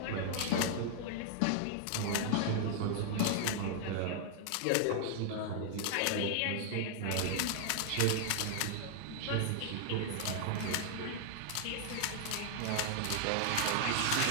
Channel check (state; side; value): different; both; correlation 0.00